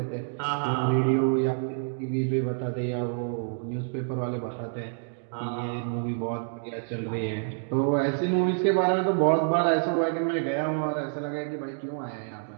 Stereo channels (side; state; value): left; silent; digital silence